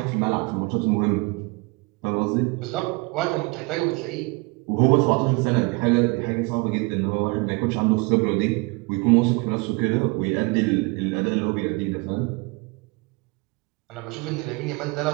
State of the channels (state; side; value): quieter; left; 27.1 dB